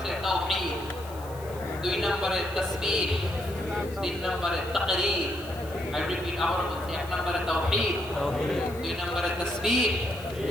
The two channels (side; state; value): left; noise; hiss, 20 dB below the sound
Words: তাওহীদ, 2 নম্বরে তাসবিহ, 3 নম্বরে তাকরীর। I repeat, আবার বলছি, 1 নম্বরে তাওহীদ, 2 নম্বরে তাসবিহ,